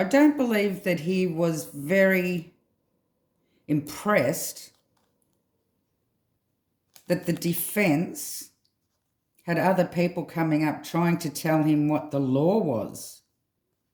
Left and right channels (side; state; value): both; identical; correlation 1.00